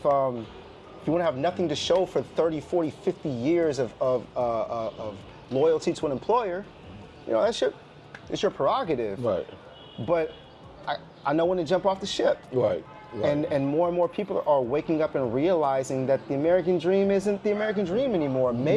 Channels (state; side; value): identical; both; correlation 1.00